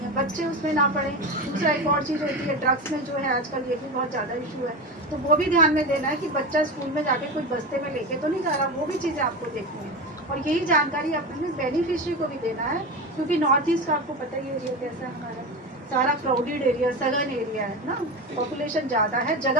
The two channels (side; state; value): both; normal; correlation 0.22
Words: है, बच्चे उसमें ना पड़े। दूसरा एक और चीज़ होती है ड्रग्स में जो है आजकल, ये भी बहुत ज़्यादा इशू है, तो वो भी ध्यान में देना है कि बच्चा स्कूल में जाके कुछ बस्ते में लेके तो नहीं जा रहा, वो भी चीज़ें आपको देखनी है। और यही जानकारी अपने बेनिफिशरी को भी देना है, क्योंकि नॉर्थ ईस्ट का आपको पता ही एरिया कैसा है, हमारा सारा क्राउडेड एरिया, सघन एरिया है ना, पॉपुलेशन ज़्यादा है,